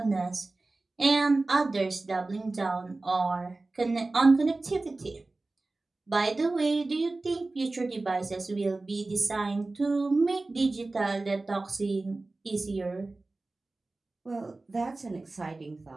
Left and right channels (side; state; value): left; quieter; 3.2 dB